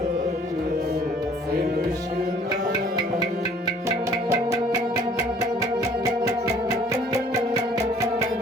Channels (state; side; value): normal; both; correlation 0.55